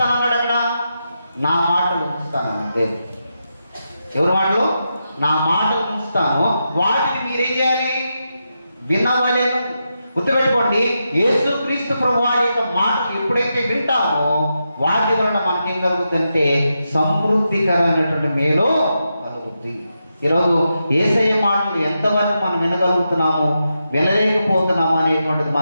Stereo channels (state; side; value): inverted; both; correlation -0.87